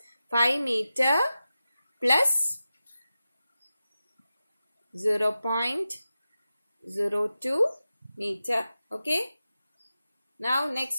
5 meter plus 0.02 meter. Okay, now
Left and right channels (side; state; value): both; inverted; correlation -0.93